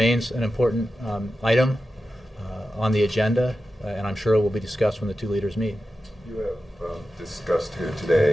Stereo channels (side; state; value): both; normal; correlation 0.92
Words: an important item on the agenda, and I'm sure it will be discussed when the two leaders meet. You have discussed here